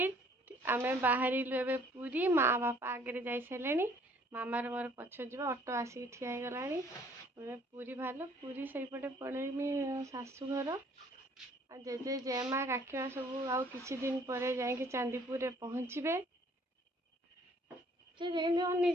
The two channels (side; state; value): both; normal; correlation 0.59